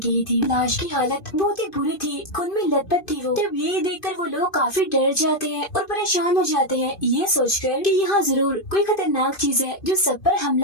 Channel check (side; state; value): right; late; 2.5 ms